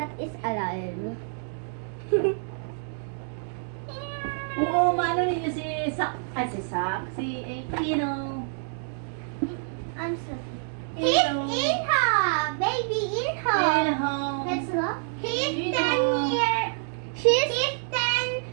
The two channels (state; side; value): silent; left; digital silence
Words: is alive. Oo, maano ninyo si Sak, si Pino. I'm sorry. He's Inha! Baby Inha! Pino. Let's look. He's Inha. 10 years. He's 10